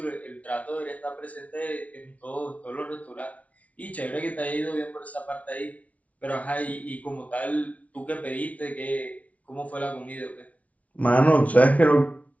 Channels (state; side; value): late; right; 0.067 ms